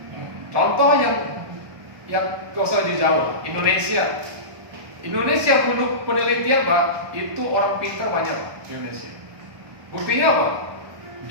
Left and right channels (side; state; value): left; late; 1.2 ms